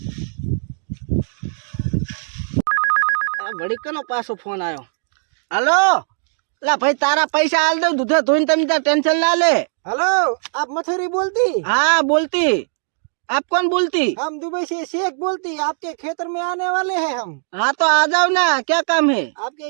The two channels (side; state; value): left; silent; digital silence